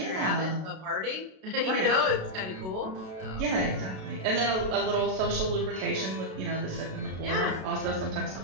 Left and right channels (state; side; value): late; left; 32 ms